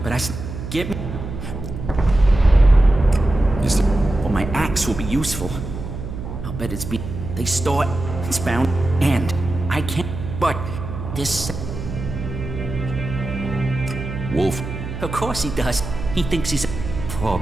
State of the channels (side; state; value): right; noise; hum, 8 dB below the sound